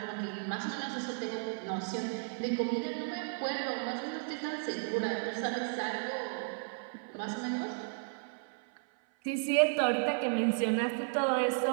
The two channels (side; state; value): left; silent; 55 dB below the other